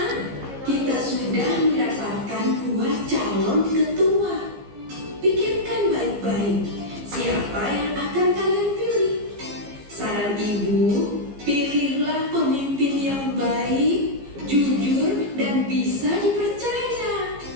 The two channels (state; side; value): late; left; 15 ms